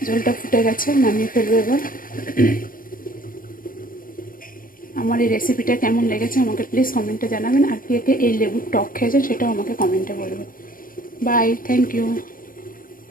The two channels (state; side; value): late; right; 0.41 ms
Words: ঝোলটা ফুটে গেছে, নামিয়ে ফেলবো এবার। আমার এই রেসিপিটা কেমন লেগেছে আমাকে প্লিজ কমেন্টে জানাবেন। আর কে কে এই লেবুর টক খেয়েছেন সেটাও আমাকে কমেন্টে বলবেন। Bye, thank you.